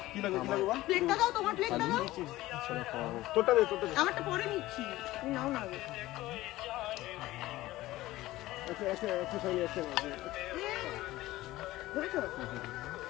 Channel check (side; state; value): right; quieter; 16.9 dB